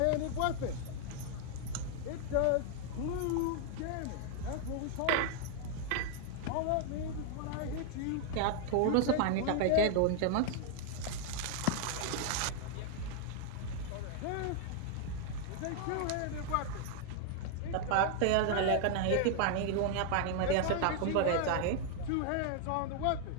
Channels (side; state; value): both; different; correlation 0.00